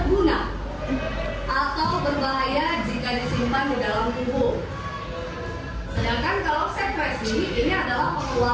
atau berbahaya jika disimpan di dalam tubuh. Sedangkan kalau sekresi ini adalah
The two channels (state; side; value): identical; both; correlation 1.00